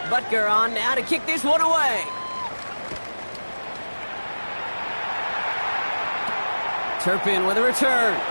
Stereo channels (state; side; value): inverted; both; correlation -1.00